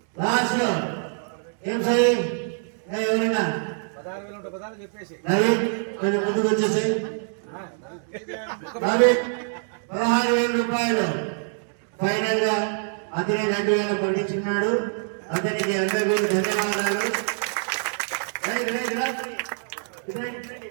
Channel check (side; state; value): left; silent; 60 dB below the other